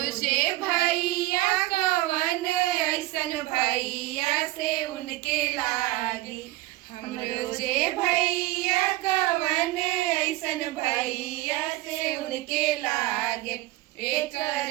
से भैया कवन ऐसन भैया से उनके लागे, हमरो से भैया कवन ऐसन भैया से उनके लागे, एक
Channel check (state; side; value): quieter; left; 18.5 dB